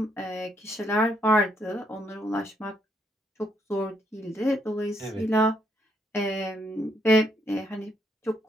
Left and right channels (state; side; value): normal; both; correlation 0.74